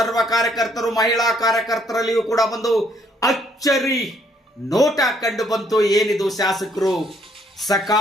ಕಾರ್ಯಕರ್ತರು, ಮಹಿಳಾ ಕಾರ್ಯಕರ್ತರಲ್ಲಿಯೂ ಕೂಡ ಒಂದು ಅಚ್ಚರಿ ನೋಟ ಕಂಡು ಬಂತು. ಏನಿದು, ಶಾಸಕರು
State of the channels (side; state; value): both; normal; correlation 0.67